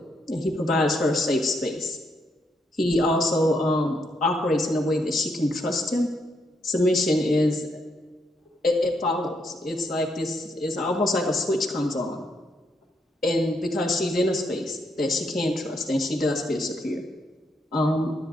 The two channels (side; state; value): both; normal; correlation 0.77